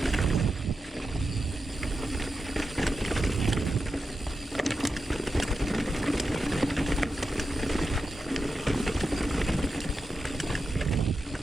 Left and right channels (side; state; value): both; normal; correlation 0.89